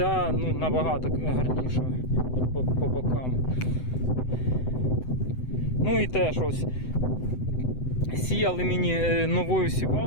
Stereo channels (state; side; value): late; right; 7.9 ms